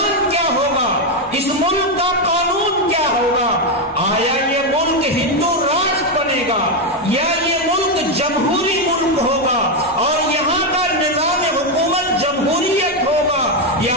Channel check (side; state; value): both; normal; correlation 0.06